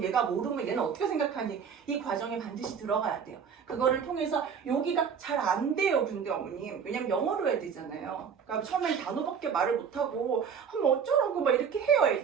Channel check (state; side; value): quieter; left; 6.8 dB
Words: 얘가 모르면 얘는 어떻게 생각하니 이 과정에 반드시 들어가야 돼요. 그거를 통해서 여기가 잘 안 돼요. 근데 어머님 왜냐면 영어로 해야 되잖아요. 그러니까 처음엔 단어밖에 말을 못하고 뭐 어쩌라고 막 이렇게 해요